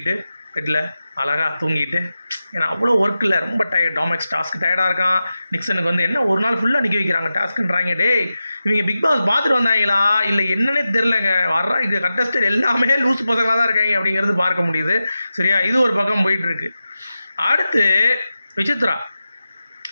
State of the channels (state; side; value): inverted; both; correlation -0.93